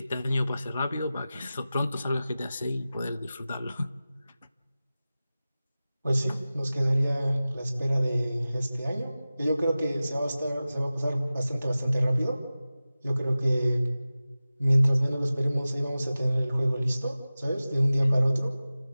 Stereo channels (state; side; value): inverted; both; correlation -0.96